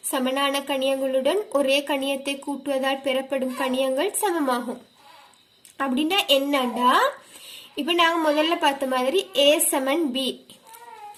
சமனான கணியங்களுடன் ஒரே கணியத்தை கூட்டுவதால் பெறப்படும் கணியங்கள் சமமாகும். அப்படின்னா என்னண்டா, இப்ப நாங்க முதல்ல பார்த்த மாதிரி A சமன் B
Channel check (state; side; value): identical; both; correlation 1.00